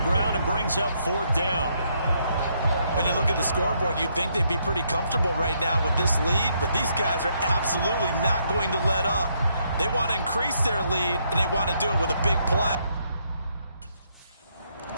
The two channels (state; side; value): inverted; both; correlation -0.74